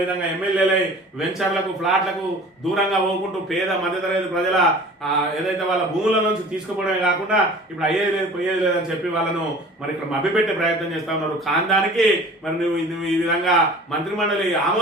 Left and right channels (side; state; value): both; normal; correlation 0.44